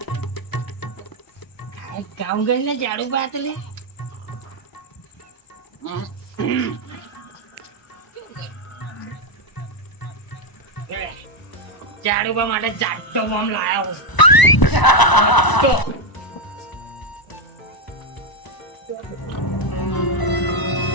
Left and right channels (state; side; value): late; right; 1.0 ms